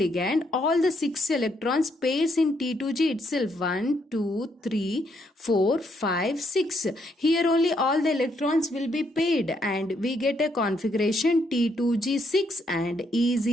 ligand, all the 6 electrons pairs in T2G itself. 1, 2, 3, 4, 5, 6. Here only all the electrons will be paired and we get a configuration T2G6 and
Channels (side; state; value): both; normal; correlation 0.74